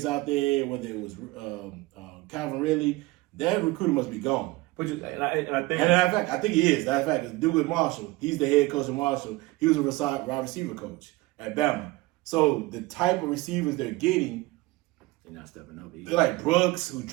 out there, whether it was Calvin Ridley, that recruiter must be gone. But I think he is. Matter of fact, Douglas Marshall, he's the head coach of Marshall. He was a wide receiver coach at Bama. So the type of receivers they're getting, they're not stepping up either. They're like Brooks, who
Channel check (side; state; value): left; quieter; 20.7 dB